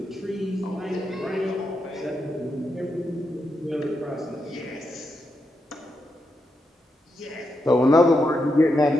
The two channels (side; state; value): both; normal; correlation 0.84